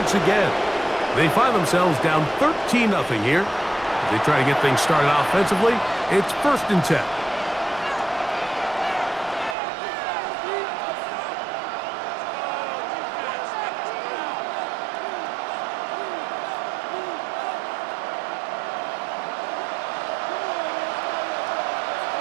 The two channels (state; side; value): drops out; left; at 9.6 s